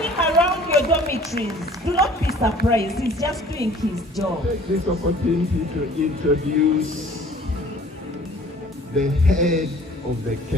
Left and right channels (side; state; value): both; normal; correlation 0.51